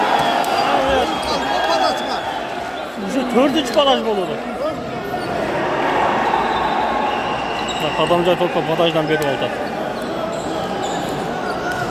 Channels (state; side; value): identical; both; correlation 1.00